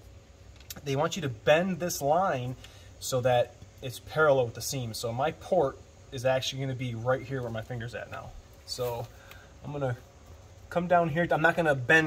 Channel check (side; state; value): both; identical; correlation 1.00